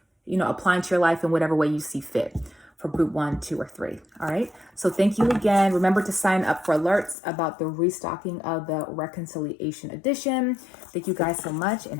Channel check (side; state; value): right; drops out; at 7.2 s